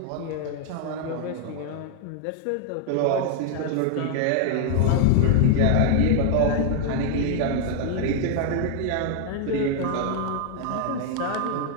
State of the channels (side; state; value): both; different; correlation 0.00